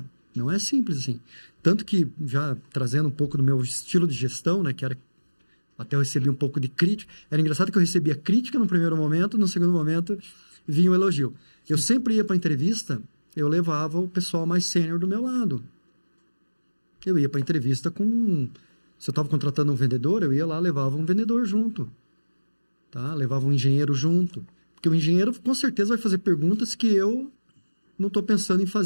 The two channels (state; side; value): inverted; both; correlation -1.00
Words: Não é simples assim. Tanto que, já trazendo um pouco do meu estilo de gestão, né, que era... Até eu recebi um pouco de crítica. Era engraçado que eu recebia crítica no primeiro momento, no segundo momento vinha um elogio. Eu sempre ia para a entrevista, eu levava o pessoal mais sênior do meu lado. Eu ia para a entrevista com... Se eu estava contratando um vendedor, eu ia lá, levava um vendedor junto. Tá? Levava um engenheiro junto. Porque o engenheiro, com certeza, vai fazer perguntas que eu não estou pensando em